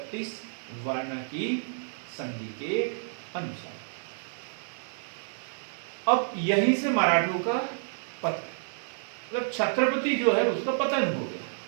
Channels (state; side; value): silent; left; digital silence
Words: वार्ना की संधि के अनुसार। अब यहीं से मराठों का पतन, मतलब छत्रपति जो है उसका पतन हो गया।